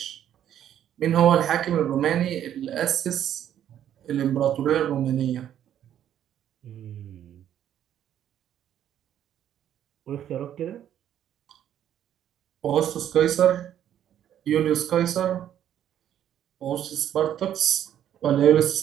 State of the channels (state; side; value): quieter; left; 10.6 dB